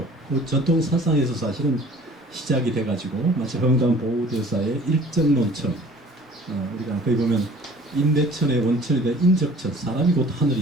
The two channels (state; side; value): normal; both; correlation 0.50